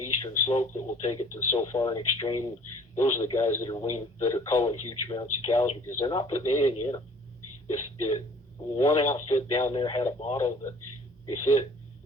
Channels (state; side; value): normal; both; correlation 0.52